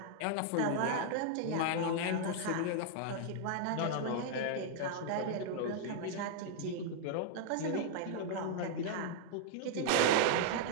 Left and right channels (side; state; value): both; different; correlation -0.01